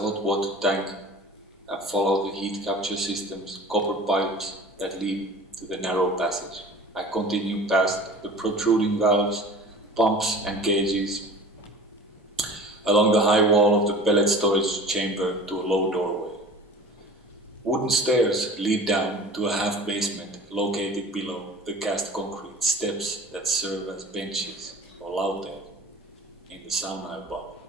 water tank, and follow the heat capture system's copper pipes that lead to the narrow passage. I continue past the protruding valves, pumps and gauges, along the high wall of the pellet storage chamber to a low doorway. Wooden stairs lead down to a half basement located below the cast concrete steps that serve as benches or laute in the sauna above.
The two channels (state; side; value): normal; both; correlation 0.41